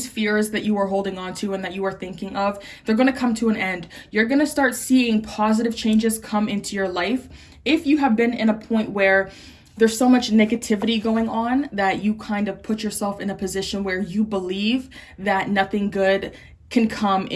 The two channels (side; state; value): both; identical; correlation 1.00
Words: fears that you are holding on to and that you are thinking of, they're going to come to an end. You're going to start seeing positive changes come into your life. If you have been in a point where there's so much negativity going on that you kind of put yourself in a position where you believe that nothing good can come